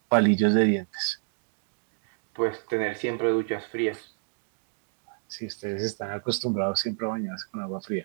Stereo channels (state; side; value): silent; left; digital silence